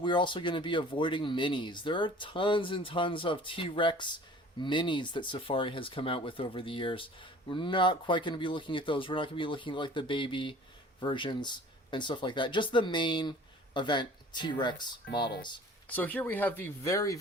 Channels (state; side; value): normal; both; correlation 0.47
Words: also going to be avoiding minis. There are tons and tons of T-Rex minis that Safari has come out with over the years. We're not quite going to be looking at those. We're not going to be looking at like the baby versions and stuff like that. Just the main event T-Rex models. So here we have the very,